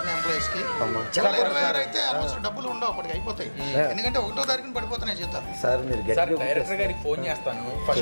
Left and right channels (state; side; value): inverted; both; correlation -1.00